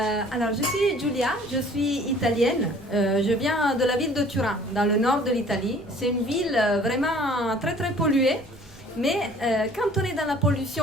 Alors, je suis Giulia, je suis italienne. Je viens de la ville de Turin, dans le nord de l'Italie. C'est une ville vraiment très très polluée. Mais quand on est dans la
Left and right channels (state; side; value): normal; both; correlation 0.52